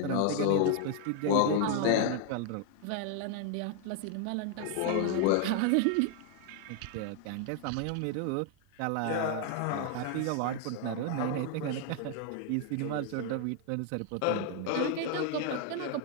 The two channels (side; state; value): both; different; correlation 0.00